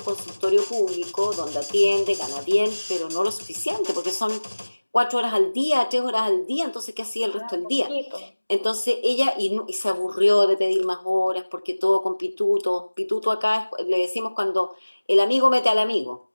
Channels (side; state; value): both; inverted; correlation -1.00